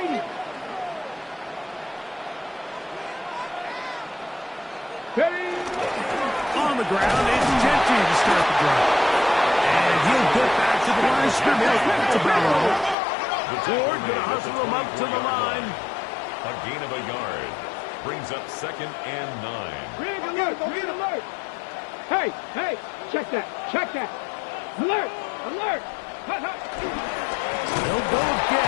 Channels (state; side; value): drops out; right; at 13.0 s